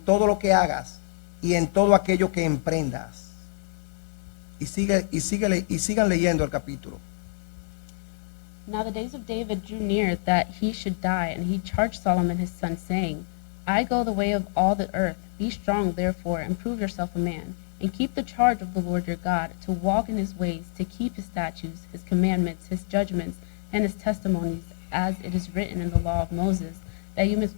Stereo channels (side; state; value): right; silent; 60 dB below the other